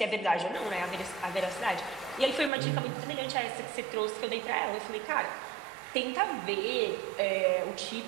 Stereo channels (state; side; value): drops out; left; at 2.5 s